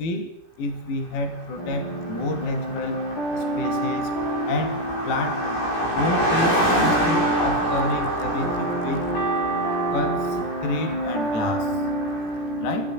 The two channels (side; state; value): right; late; 17 ms